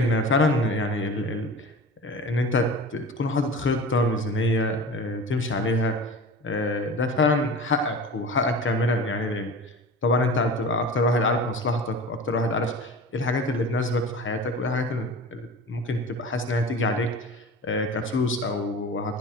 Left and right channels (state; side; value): normal; both; correlation 0.35